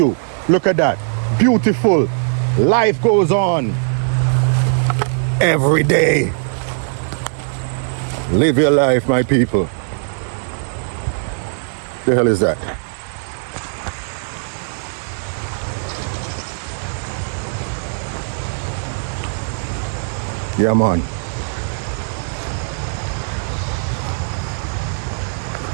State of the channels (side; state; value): left; silent; 66 dB below the other